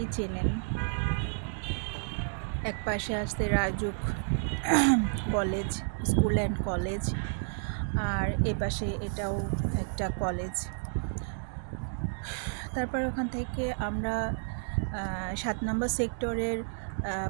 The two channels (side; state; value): left; silent; digital silence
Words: চেনেন। এক পাশে আসছে Rajuk college, school and college, আর এ পাশে এটাও একটা কলেজ। তারপর ওখান থেকে আমরা 7 নম্বর সেক্টরের